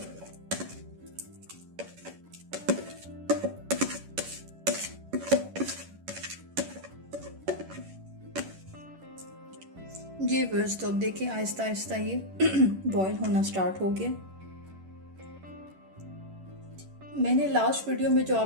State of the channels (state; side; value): late; left; 11 ms